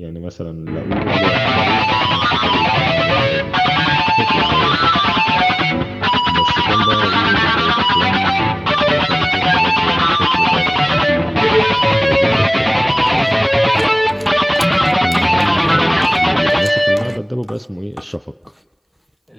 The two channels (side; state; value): both; identical; correlation 1.00